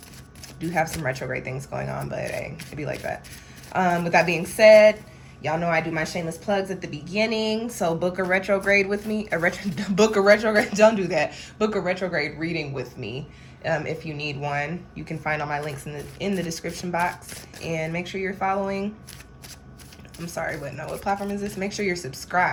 Do have some retrograde things going on, but hey, it'd be like that. With that being said, y'all know I do my shameless plugs at the beginning. So book a retrograde with me. Book a retrograde. Don't do that. Book a retrograde reading with me. If you need one, you can find all my links in the description box. And make sure you're following. I'm sorry, but no, what platform is this? Make sure you're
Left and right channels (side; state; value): both; identical; correlation 1.00